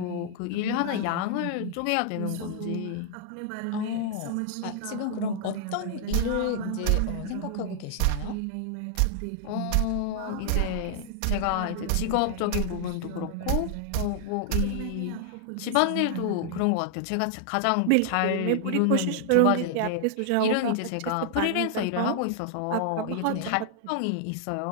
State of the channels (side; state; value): both; different; correlation -0.01